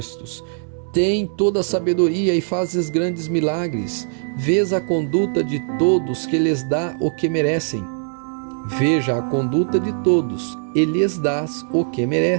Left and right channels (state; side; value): silent; left; digital silence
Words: Tem toda a sabedoria e fazes grandes milagres. Vês a conduta de todos que lhes dá o que merecem. Veja a conduta de todos, e lhes dás o que